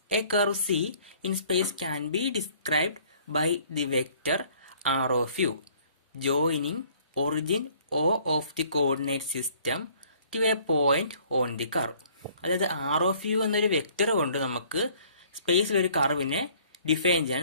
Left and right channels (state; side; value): inverted; both; correlation -0.57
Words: A curve C in space can be described by the vector R of U joining origin O of the coordinate system to a point on the curve. അതായത് ആർ ഓഫ് യു എന്നൊരു വെക്ടർ കൊണ്ട് നമുക്ക് സ്പേസിൽ ഒരു കർവിനെ ഡിഫൈൻ